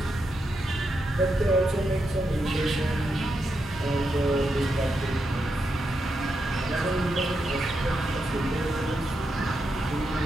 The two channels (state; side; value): normal; both; correlation 0.84